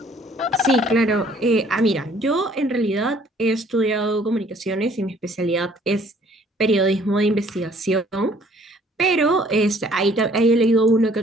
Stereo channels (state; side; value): normal; both; correlation 0.59